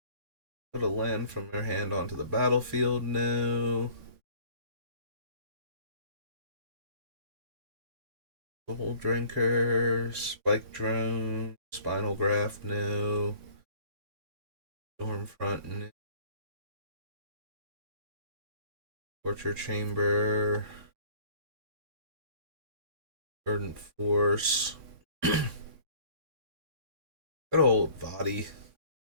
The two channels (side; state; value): left; late; 3.5 ms